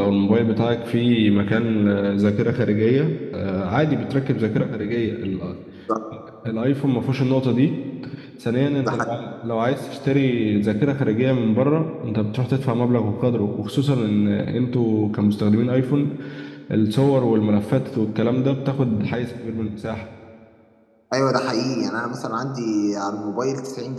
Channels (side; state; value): both; identical; correlation 1.00